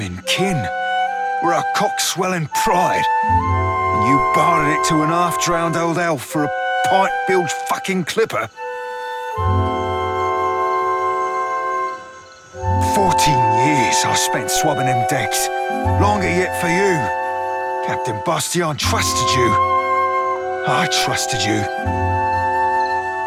and kin. We're our cock-swelling pride. And you bartered it to an half-drowned old elf for a pint-bilged fucking clipper. 14 years I spent swabbing them decks. Longer yet for you. Captain Bastion trusted you. I trusted you.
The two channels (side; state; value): both; identical; correlation 1.00